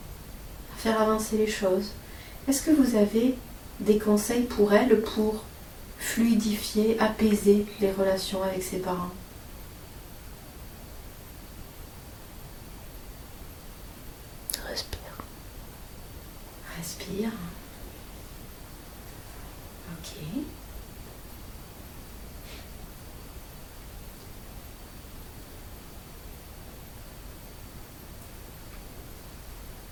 à faire avancer les choses. Est-ce que vous avez des conseils pour elle pour fluidifier, apaiser les relations avec ses parents? Respire. Respire. Ok.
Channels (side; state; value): both; identical; correlation 1.00